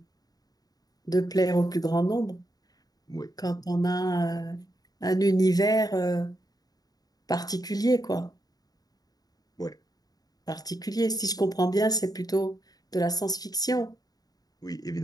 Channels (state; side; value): late; right; 0.18 ms